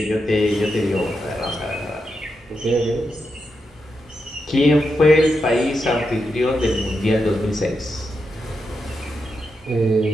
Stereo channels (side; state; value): both; normal; correlation 0.86